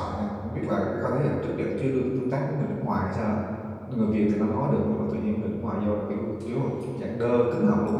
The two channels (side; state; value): both; identical; correlation 1.00